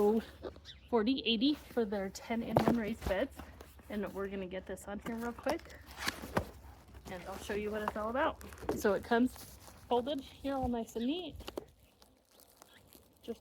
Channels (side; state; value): both; identical; correlation 1.00